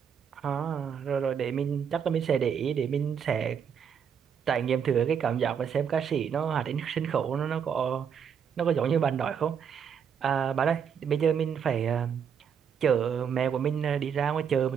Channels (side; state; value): left; quieter; 7.5 dB